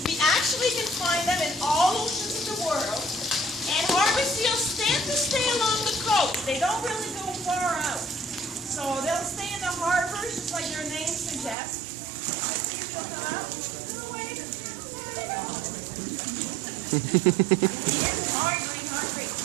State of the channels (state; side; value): drops out; left; at 11.6 s